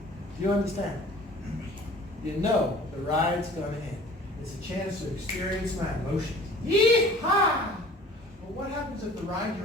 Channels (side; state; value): both; normal; correlation 0.47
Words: Do you understand? You know the ride's going to end. It's a chance to experience my emotions. Yee-haw! But what happens if the ride